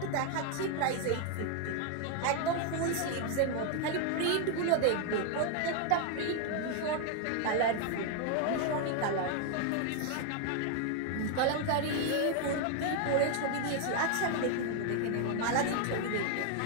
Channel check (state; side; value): different; both; correlation 0.00